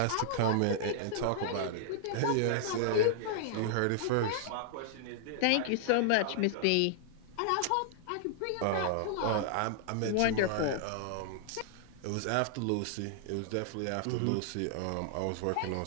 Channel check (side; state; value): both; different; correlation -0.01